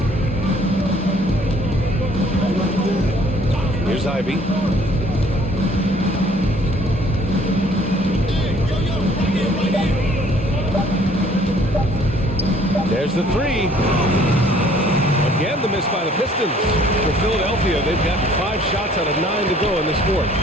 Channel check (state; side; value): normal; both; correlation 0.58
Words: Here's Ivy. There's the 3. Again, the miss by the Pistons. For Philadelphia, they've gotten 5 shots out of 9 to go in this fourth.